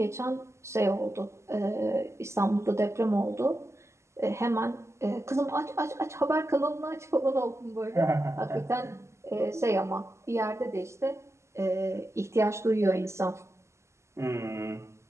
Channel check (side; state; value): left; late; 0.13 ms